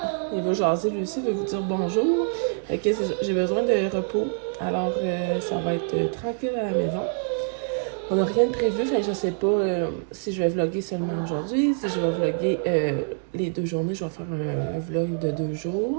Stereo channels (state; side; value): silent; left; digital silence